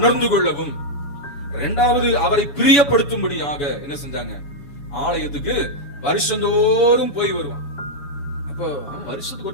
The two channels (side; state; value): right; late; 7.0 ms